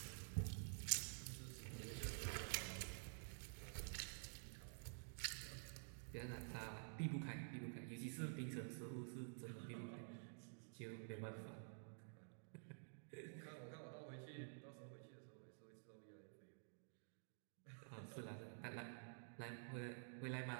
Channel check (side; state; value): left; silent; digital silence